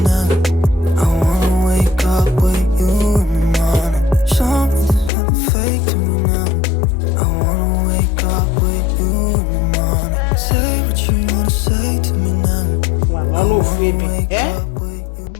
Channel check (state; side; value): drops out; right; at 5.1 s